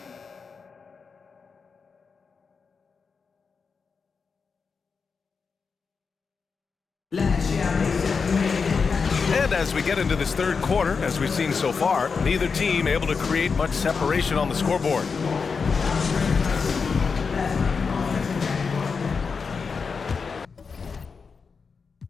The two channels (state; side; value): quieter; right; 5.3 dB